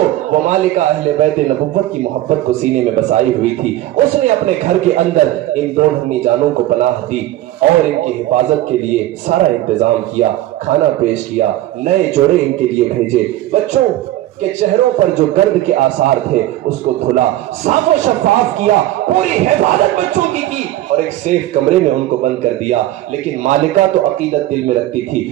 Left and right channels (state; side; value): quieter; left; 14.8 dB